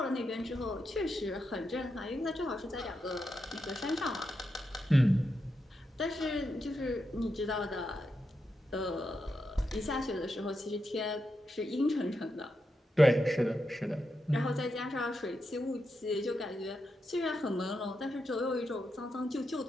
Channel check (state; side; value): normal; both; correlation 0.86